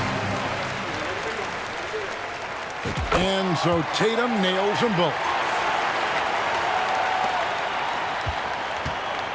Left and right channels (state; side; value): identical; both; correlation 1.00